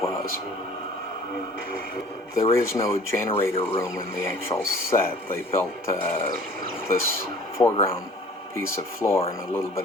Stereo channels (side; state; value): both; normal; correlation 0.49